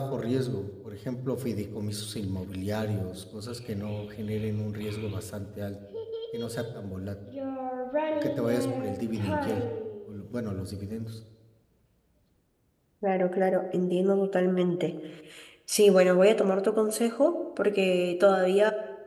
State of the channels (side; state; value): both; identical; correlation 1.00